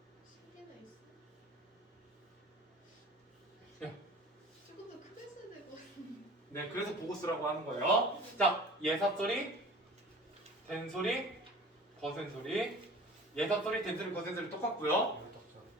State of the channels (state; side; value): normal; both; correlation 0.42